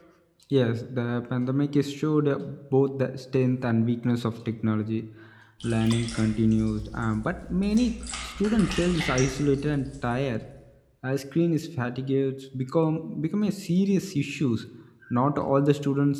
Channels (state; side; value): identical; both; correlation 1.00